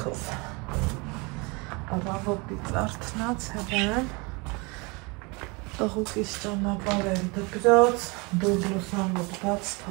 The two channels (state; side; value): quieter; left; 28.2 dB